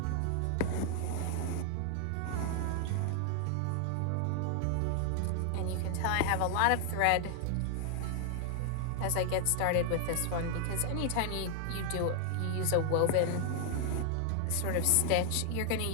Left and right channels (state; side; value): different; both; correlation 0.00